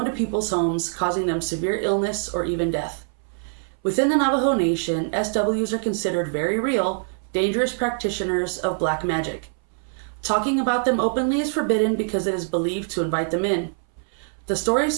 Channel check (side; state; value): left; silent; 61 dB below the other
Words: people's homes, causing them severe illness or even death. Within the Navajo Nation, SWs are considered very real, dangerous practitioners of black magic. Talking about them openly is forbidden because it is believed to invite them in. The